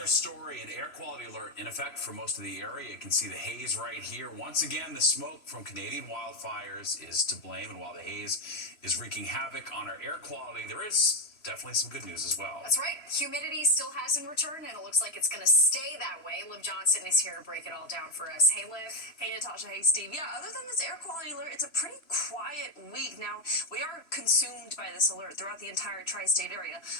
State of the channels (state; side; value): late; right; 3.0 ms